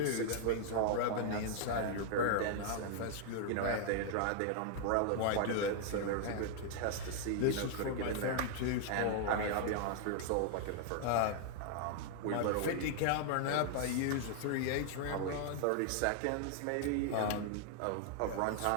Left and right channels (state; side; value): different; both; correlation 0.00